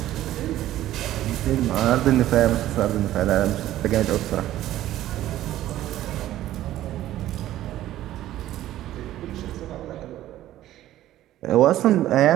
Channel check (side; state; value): left; quieter; 13.8 dB